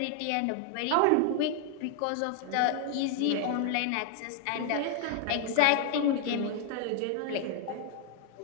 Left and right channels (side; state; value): both; different; correlation 0.00